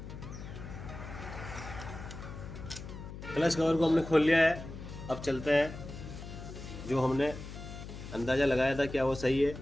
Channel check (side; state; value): left; noise; hum, 11 dB below the sound